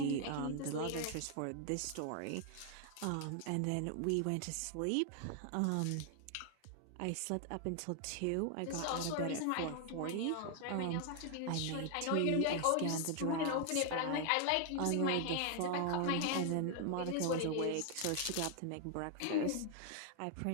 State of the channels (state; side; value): different; both; correlation 0.00